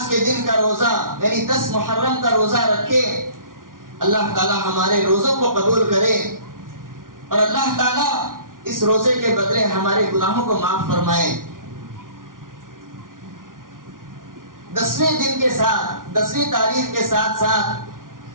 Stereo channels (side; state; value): left; late; 0.89 ms